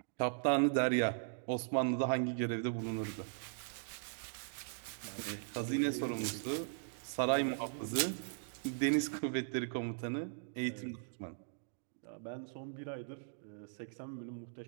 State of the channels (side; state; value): left; silent; digital silence